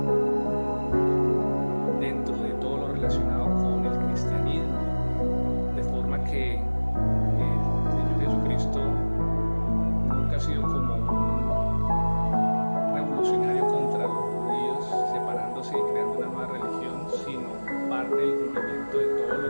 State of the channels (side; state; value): both; inverted; correlation -1.00